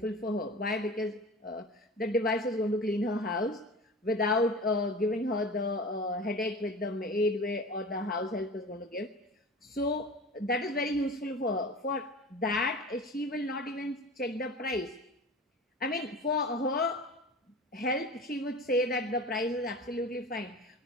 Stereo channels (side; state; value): both; normal; correlation 0.35